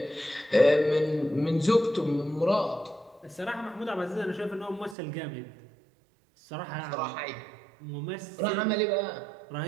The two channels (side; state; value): left; drops out; at 5.0 s